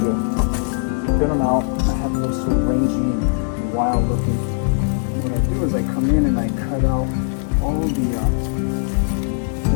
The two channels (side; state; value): right; silent; digital silence